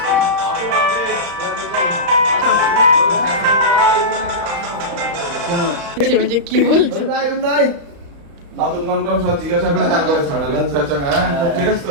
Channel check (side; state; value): left; late; 35 ms